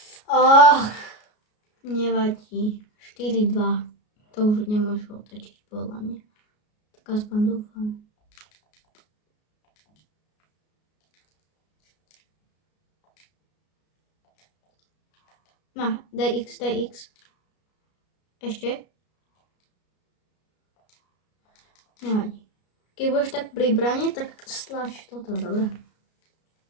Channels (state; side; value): late; right; 33 ms